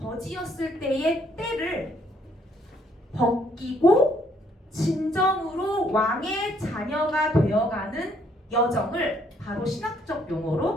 때의 때를 벗기고 진정으로 왕의 자녀가 되어가는 여정을 바로 신학적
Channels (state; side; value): normal; both; correlation 0.67